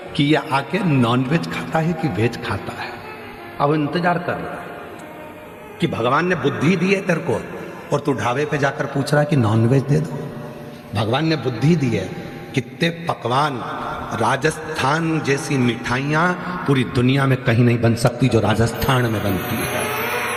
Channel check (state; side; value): identical; both; correlation 1.00